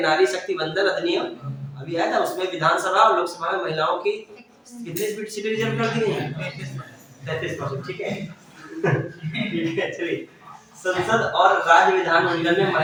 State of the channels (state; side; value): identical; both; correlation 1.00